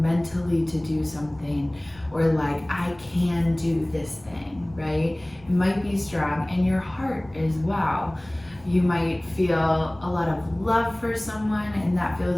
mentally to do something, or like, I can do this thing, right? It might be strong in your heart as well. You might feel a lot of love for someone and that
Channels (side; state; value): left; noise; rumble, 24 dB below the sound